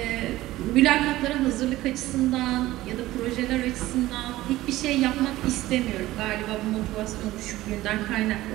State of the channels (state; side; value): quieter; left; 16.7 dB